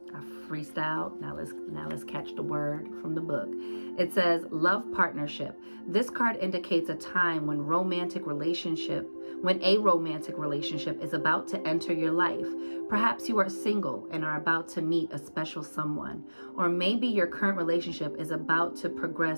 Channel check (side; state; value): both; inverted; correlation -1.00